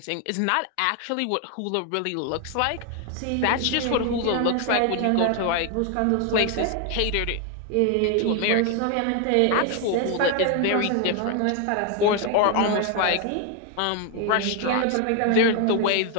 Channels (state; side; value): different; both; correlation 0.01